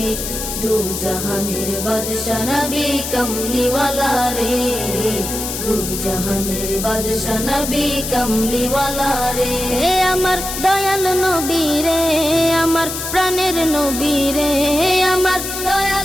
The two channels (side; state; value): left; noise; hiss, 5 dB below the sound